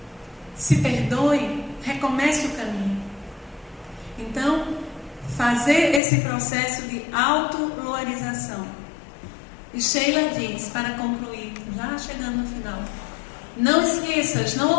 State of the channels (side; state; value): right; drops out; at 6.0 s